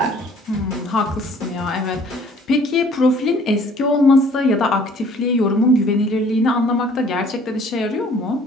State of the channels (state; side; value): normal; both; correlation 0.55